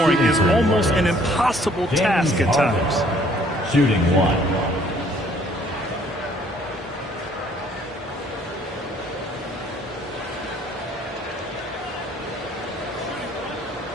is almost an impossible task at times. Shooting 1.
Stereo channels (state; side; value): normal; both; correlation 0.60